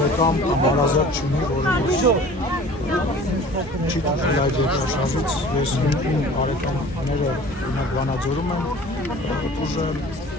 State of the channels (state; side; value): normal; both; correlation 0.45